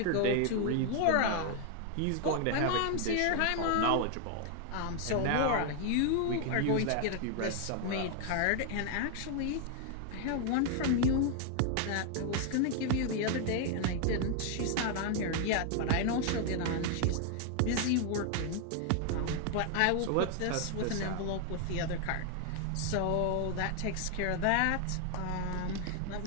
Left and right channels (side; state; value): both; different; correlation 0.00